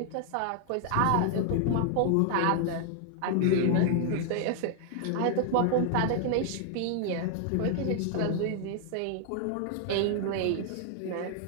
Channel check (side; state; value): both; different; correlation 0.00